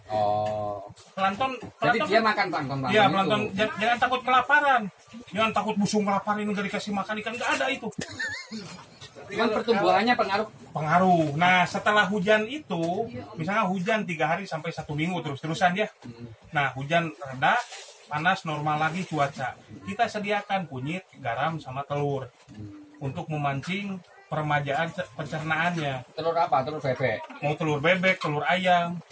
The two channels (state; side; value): identical; both; correlation 1.00